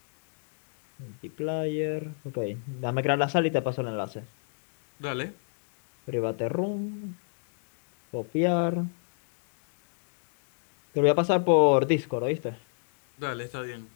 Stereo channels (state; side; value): silent; right; digital silence